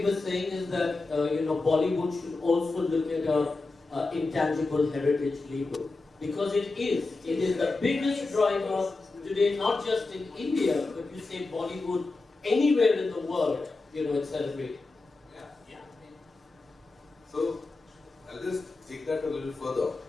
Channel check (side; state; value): right; quieter; 3.5 dB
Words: were saying is that, Bollywood should also look at intangible heritage label. Because it is the biggest driver today, not just in India, but you say Bollywood anywhere in the world, it's celebrated. Yeah. So, I'll just take that a little further.